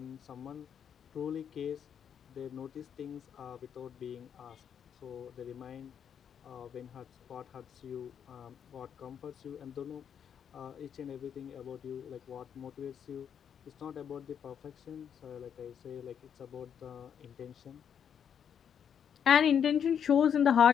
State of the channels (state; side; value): quieter; right; 8.2 dB